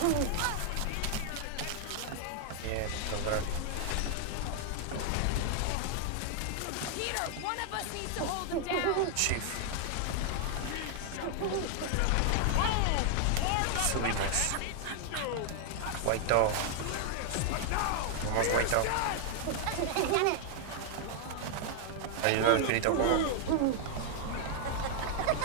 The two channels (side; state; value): both; different; correlation 0.00